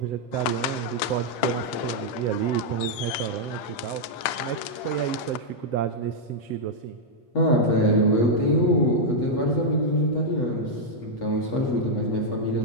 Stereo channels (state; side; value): late; right; 8.7 ms